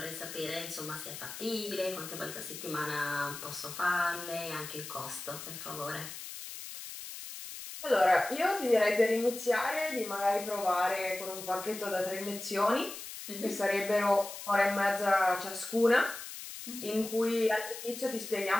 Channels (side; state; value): left; noise; hiss, 10 dB below the sound